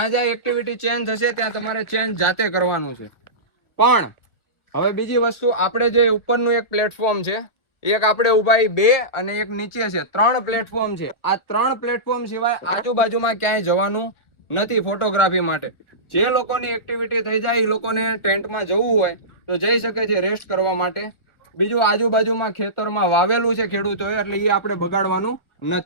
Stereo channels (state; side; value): late; right; 1.4 ms